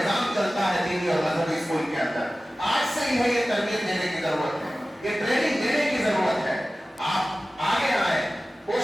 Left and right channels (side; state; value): both; normal; correlation 0.96